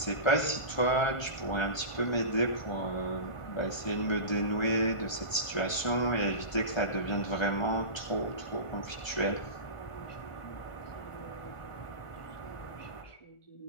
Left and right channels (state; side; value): late; right; 1.4 ms